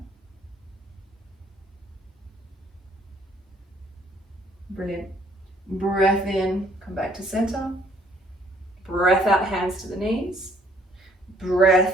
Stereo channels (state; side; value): normal; both; correlation 0.62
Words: Brilliant. Breath in, come back to center. Breath out, hands to the knees.